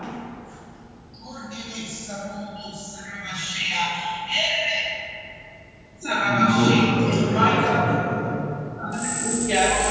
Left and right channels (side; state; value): both; identical; correlation 1.00